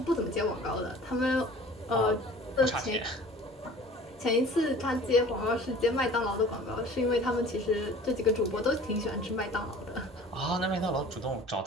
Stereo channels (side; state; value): both; normal; correlation 0.45